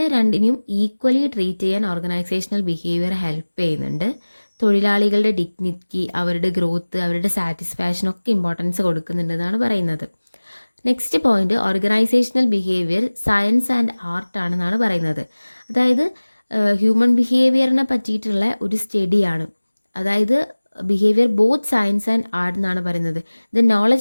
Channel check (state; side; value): inverted; both; correlation -1.00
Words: രണ്ടിനെയും ഈക്വലി ട്രീറ്റ് ചെയ്യാൻ ഓർഗനൈസേഷണൽ ബിഹേവിയർ ഹെൽപ്പ് ചെയ്യുന്നുണ്ട്. തൊഴിലാളികളുടെ ഡിഗ്നിറ്റി, അവരുടെ ഗ്രോത്ത്, അവരുടെ സാറ്റിസ്ഫാക്ഷൻ ഒക്കെ ഇമ്പോർട്ടൻസ് കൊടുക്കുന്നുണ്ടെന്നാണ് പറയുന്നത്. Next point, organisational behaviour science and art ആണെന്നാണ് പറയുന്നത്. അതായത് ഹ്യൂമൻ ബിഹേവിയറിനെ പറ്റിയിട്ടുള്ള ഒരു സ്റ്റഡിയാണ്. അതായത് behaviour both science and art എന്നാണ് പറയുന്നത്. The